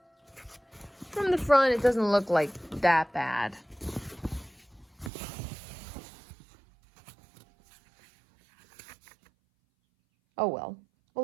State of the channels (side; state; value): left; drops out; at 5.1 s